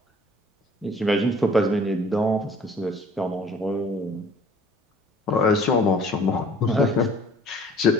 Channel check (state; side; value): normal; both; correlation 0.53